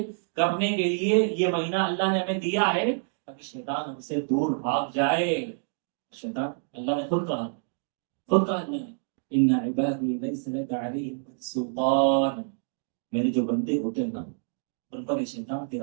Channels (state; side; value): silent; left; digital silence